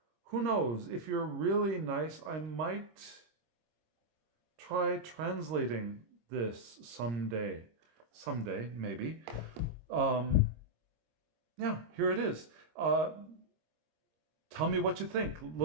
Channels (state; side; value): late; left; 26 ms